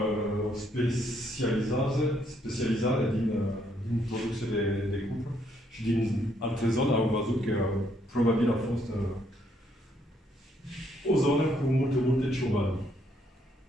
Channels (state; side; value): normal; both; correlation 0.71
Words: specializare din producție de cupru și din alte zone au văzut că probabil a fost o zonă cu multe ciobani.